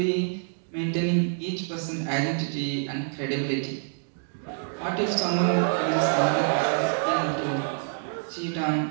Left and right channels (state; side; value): silent; left; digital silence